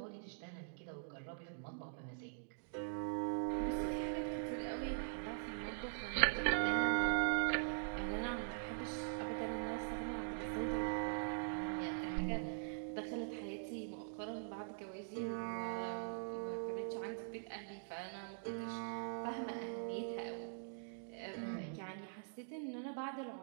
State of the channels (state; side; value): silent; left; digital silence